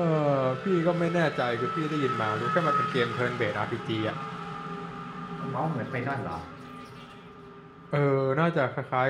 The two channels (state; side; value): identical; both; correlation 1.00